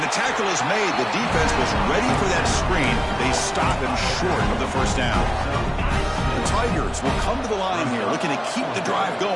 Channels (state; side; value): identical; both; correlation 1.00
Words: the tackle is made. The defense was ready for that screen. They stop him short of the first down. The Tigers will come to the line here, looking to keep the drive